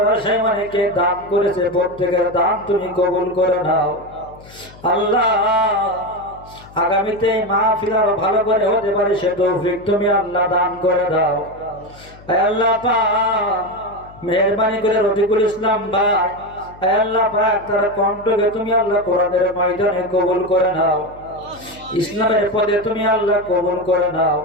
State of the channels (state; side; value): noise; left; hum, 21 dB below the sound